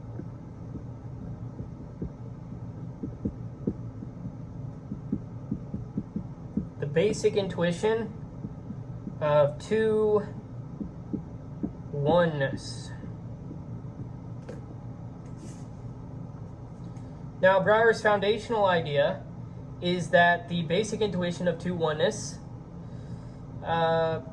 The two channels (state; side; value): identical; both; correlation 1.00